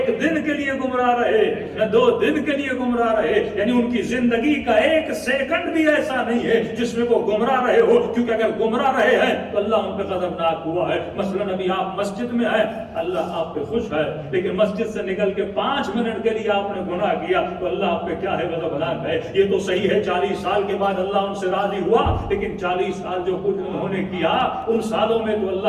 دن کے لیے گمراہ رہے، نہ 2 دن کے لیے گمراہ رہے. یعنی ان کی زندگی کا 1 سیکنڈ بھی ایسا نہیں ہے جس میں وہ گمراہ رہے ہو. کیونکہ اگر گمراہ رہے ہیں تو اللہ ان پہ غضبناک ہوا ہے. مثلا ابھی آپ مسجد میں ہیں، اللہ آپ پہ خوش ہے، لیکن مسجد سے نکل کے 5 منٹ کے لیے آپ نے گناہ کیا تو اللہ آپ پہ کیا ہے؟ غضبناک ہے. یہ تو صحیح ہے 40 سال کے بعد اللہ ان سے راضی ہوا، لیکن 40 سال جو کچھ انہوں نے کیا ان سالوں میں تو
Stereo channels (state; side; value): identical; both; correlation 1.00